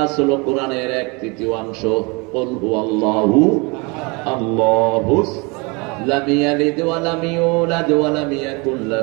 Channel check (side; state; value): left; quieter; 28.9 dB